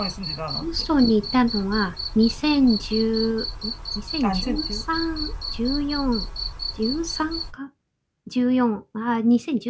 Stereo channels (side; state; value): both; identical; correlation 1.00